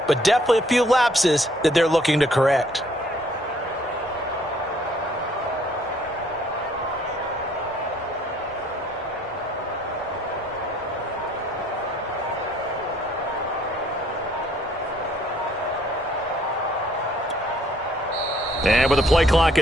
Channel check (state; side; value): normal; both; correlation 0.62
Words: but definitely a few lapses that they're looking to correct. And with the play clock